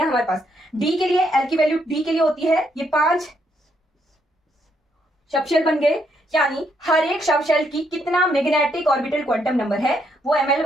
हमारे पास। D के लिए L की वैल्यू D के लिए होती है, ये 5 सबशेल बन गए, यानी हर एक सबशेल की कितना मैग्नेटिक ऑर्बिटल क्वांटम नंबर है वो Ml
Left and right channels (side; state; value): both; normal; correlation 0.75